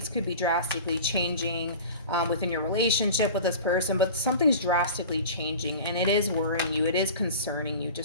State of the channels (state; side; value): inverted; both; correlation -0.36